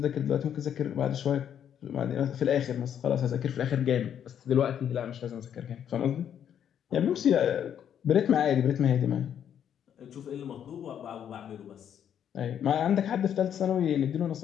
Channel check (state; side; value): quieter; right; 9.2 dB